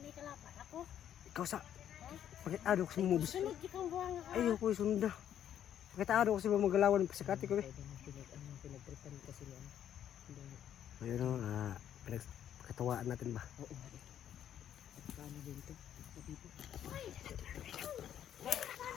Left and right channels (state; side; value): quieter; right; 10.2 dB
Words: kalapan ako? Ikaw sa... Pagkatado ko sa mumubis. Sunod ikang buwang ka. Ayoko yung sunod na. Pagkatado ko sa mga magalawan ng pasakati ko eh. Pinagtripan kasi niya. Ayun o, pinagkatawaan natin ba? Oo nga eh. Paano din ito? Dito.